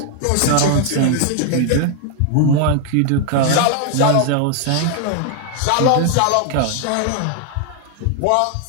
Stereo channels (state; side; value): different; both; correlation 0.00